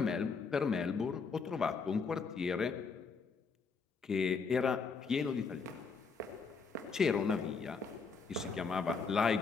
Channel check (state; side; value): quieter; right; 5.0 dB